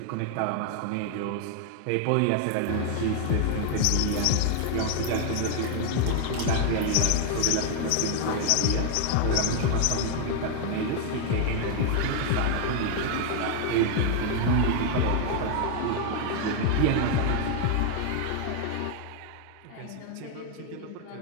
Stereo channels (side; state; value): both; different; correlation 0.00